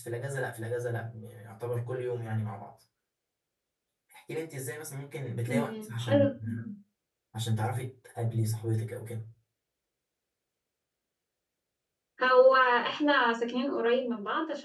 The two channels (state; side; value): identical; both; correlation 1.00